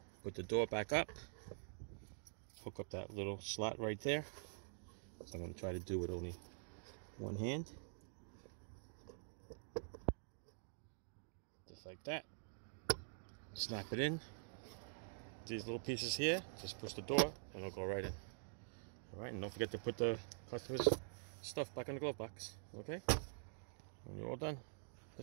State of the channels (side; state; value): left; silent; digital silence